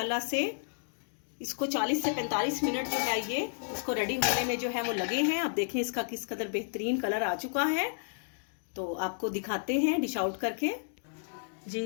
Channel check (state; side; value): silent; right; digital silence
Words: से इसको 40 से 45 मिनट जो है ये इसको रेडी होने में जो है वो लगे हैं। अब देखें इसका किस कदर बेहतरीन कलर आ चुका है। तो आपको दिखाते हैं डिश आउट करके